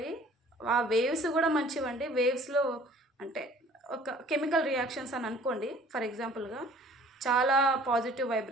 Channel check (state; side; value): normal; both; correlation 0.52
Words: ఆ వేవ్స్ కూడా మంచివండి. వేవ్స్లో అంటే ఒక కెమికల్ రియాక్షన్స్ అని అనుకోండి ఫర్ ఎగ్జాంపుల్గా, చాలా పాజిటివ్